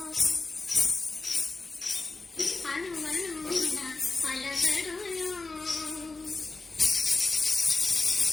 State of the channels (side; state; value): right; quieter; 3.6 dB